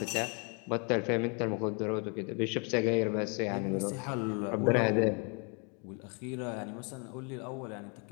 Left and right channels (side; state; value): right; quieter; 36.2 dB